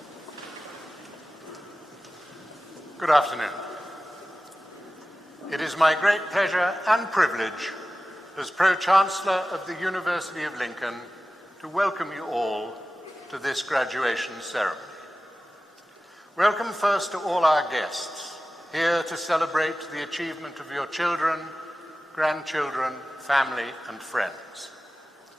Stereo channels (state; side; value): normal; both; correlation 0.96